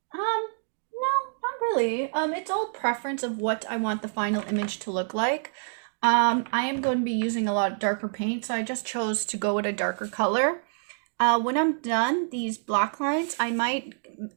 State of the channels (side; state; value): left; silent; digital silence